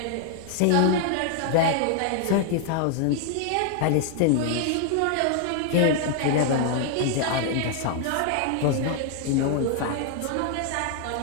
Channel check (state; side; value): different; both; correlation 0.00